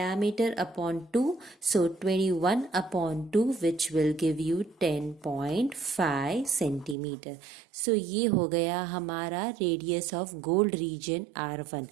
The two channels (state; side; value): drops out; left; at 7.0 s